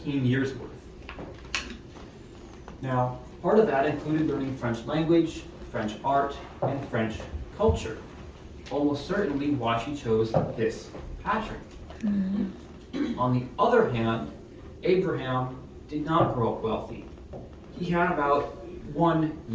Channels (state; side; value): identical; both; correlation 1.00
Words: years worth. Now, part of that included learning French language, French art, and French culture. Almost certainly why she chose this pattern. On the other hand, Abraham did not grow up wealthy. He had about 1